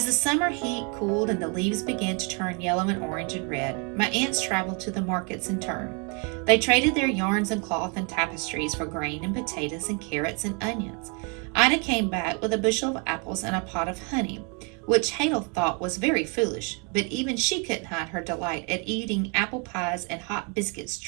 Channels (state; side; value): quieter; left; 34.6 dB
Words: the summer heat cooled and the leaves began to turn yellow and orange and red, my aunts traveled to the markets in turn. They traded their yarns and cloth and tapestries for grain and potatoes and carrots and onions. Ida came back with a bushel of apples and a pot of honey, which Hadel thought was very foolish, but even she couldn't hide her delight at eating apple pies and hot biscuits